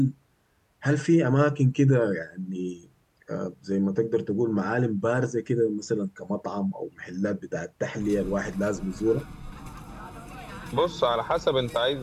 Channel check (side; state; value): both; identical; correlation 1.00